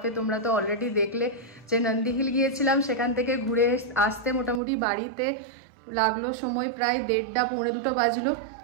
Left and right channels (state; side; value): drops out; left; at 4.6 s